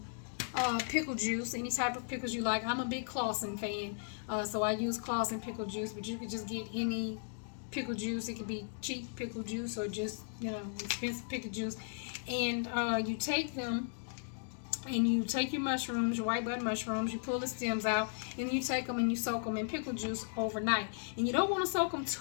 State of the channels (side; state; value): right; silent; digital silence